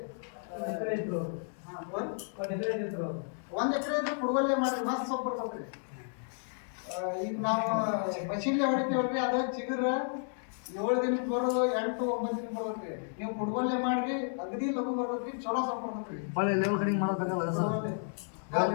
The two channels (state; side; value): silent; right; digital silence